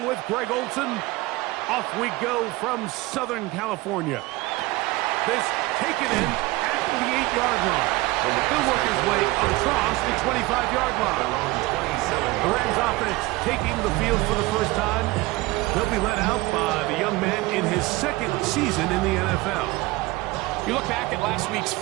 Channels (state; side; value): quieter; left; 20.7 dB